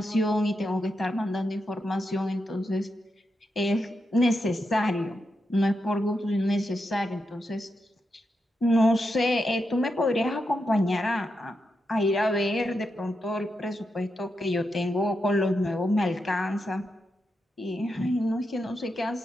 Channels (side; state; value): both; normal; correlation 0.86